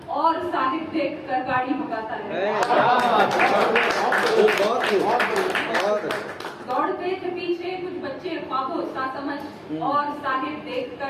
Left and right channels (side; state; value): both; identical; correlation 1.00